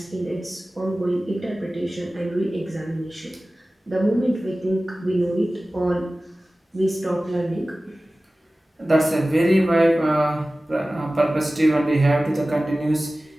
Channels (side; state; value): both; normal; correlation 0.97